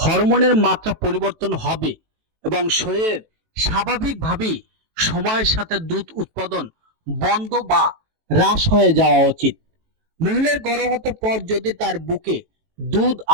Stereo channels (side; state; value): left; late; 18 ms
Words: মাত্রা পরিবর্তন হবে এবং শরীরের স্বাভাবিকভাবেই সময়ের সাথে দুধ উৎপাদন বন্ধ বা হ্রাস হয়ে যাওয়া উচিত। মহিলার গর্ভপাতের পর যদি তার বুকে দুধ